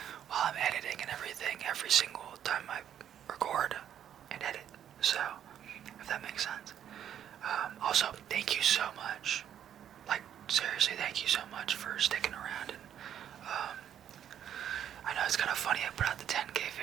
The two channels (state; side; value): quieter; left; 9.8 dB